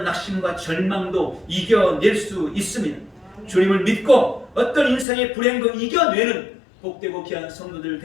낙심과 절망도 이겨낼 수 있습니다. 주님을 믿고 어떤 인생의 불행도 이겨내는 복되고 귀한 성도들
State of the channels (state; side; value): drops out; right; at 5.1 s